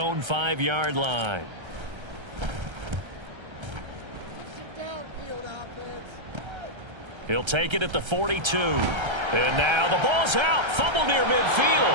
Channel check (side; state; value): left; late; 1.3 ms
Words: 5-yard line. He'll take it at the 42. And now the ball's out. Fumble near